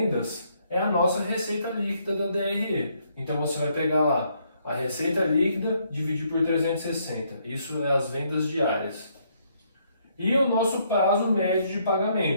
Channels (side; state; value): both; inverted; correlation -0.71